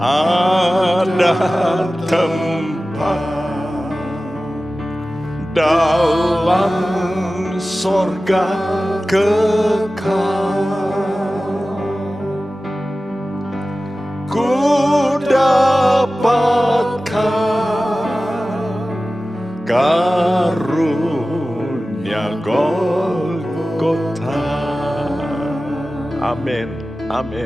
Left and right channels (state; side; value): normal; both; correlation 0.96